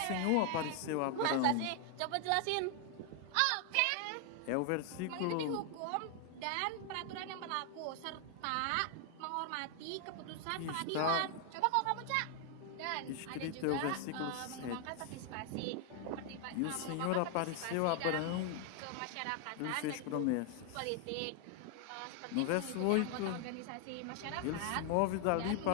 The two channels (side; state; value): both; different; correlation 0.00